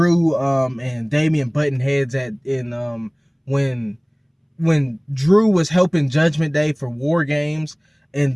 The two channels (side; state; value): both; identical; correlation 1.00